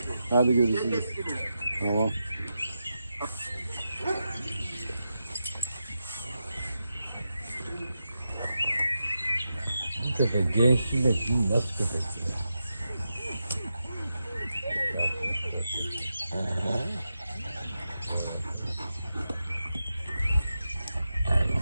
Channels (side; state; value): both; inverted; correlation -0.88